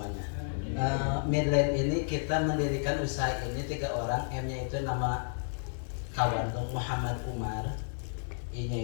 Midland ini kita mendirikan usaha ini 3 orang. M-nya itu nama kawan Muhammad Umar,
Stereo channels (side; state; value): right; silent; 57 dB below the other